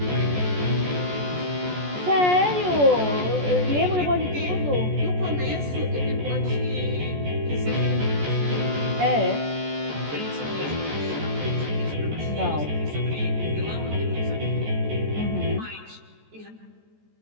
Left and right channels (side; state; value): left; late; 14 ms